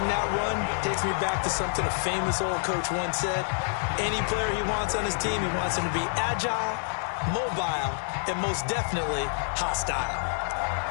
that run takes me back to something a famous old coach once said. Any player he wants on his team, he wants him to be agile, mobile, and most definitely hostile.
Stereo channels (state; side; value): silent; right; digital silence